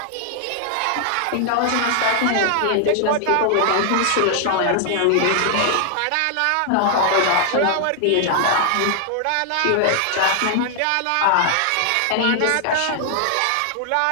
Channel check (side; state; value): both; different; correlation 0.00